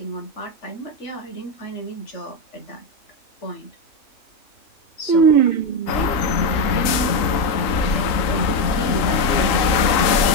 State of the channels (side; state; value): right; late; 3.7 ms